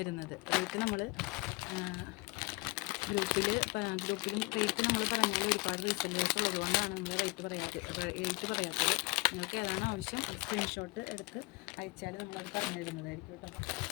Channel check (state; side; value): quieter; right; 24.7 dB